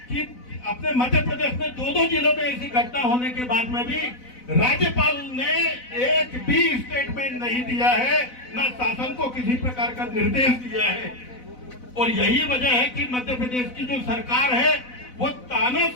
कि अपने मध्य प्रदेश में 2-2 जिलों में ऐसी घटना होने के बाद में भी राज्यपाल ने एक भी स्टेटमेंट नहीं दिया है, न शासन को किसी प्रकार का निर्देश दिया है। और यही वजह है कि मध्य प्रदेश की जो सरकार है वो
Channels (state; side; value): late; right; 4.0 ms